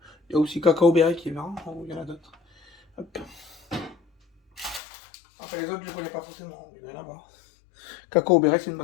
Il y a aussi Cacao Berry qui est marrant. Il y en a d'autres. Hop. Enfin, les autres, je ne connais pas forcément. Il y en a là-bas. Cacao Berry, c'est une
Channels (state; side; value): drops out; right; at 4.8 s